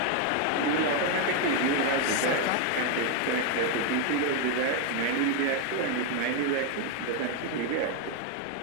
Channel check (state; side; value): different; both; correlation 0.01